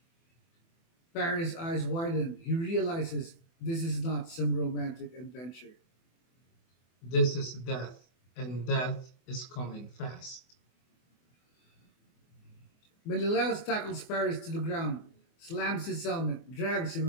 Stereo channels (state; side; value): late; right; 24 ms